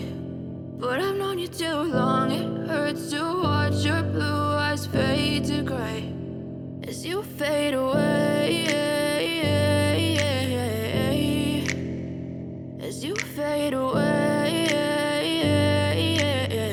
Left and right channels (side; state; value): both; identical; correlation 1.00